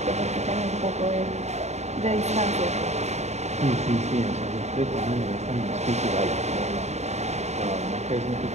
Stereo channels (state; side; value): late; left; 0.32 ms